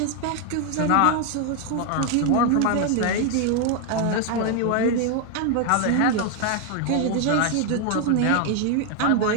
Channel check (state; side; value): different; both; correlation 0.01